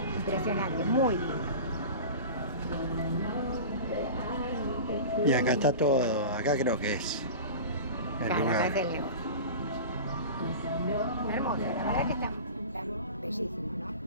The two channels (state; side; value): inverted; both; correlation -0.33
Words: impresionante, muy lindo. Y acá está todo, acá creo que es el Claro, acá lugar. es el negocio. Hermoso, la verdad que está bellísimo, ¿no?